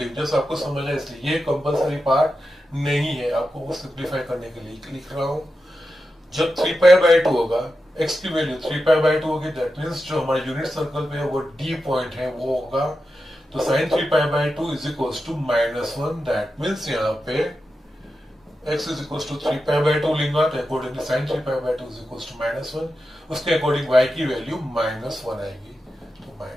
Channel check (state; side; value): normal; both; correlation 0.90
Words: just आपको समझना है इसलिए। ये कंपलसरी पार्ट नहीं है, आपको वो सिंप्लीफाई करने के लिए लिख रहा हूं। जब 3π/2 होगा, x की वैल्यू 3π/2 होगी, दैट मीन्स जो हमारा यूनिट सर्कल पे है वो D पॉइंट है वो होगा, तो sin 3π/2 is equals to -1, that means यहाँ पे x इज इक्वल्स टू 3π/2 लेंगे तो accordingly sin 3π/2 is equals to -1, उसके अकॉर्डिंग y की वैल्यू -1 आएगी, तो